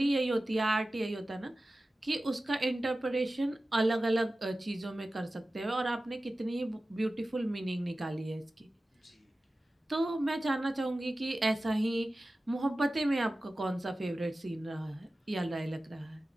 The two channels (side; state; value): both; normal; correlation 0.96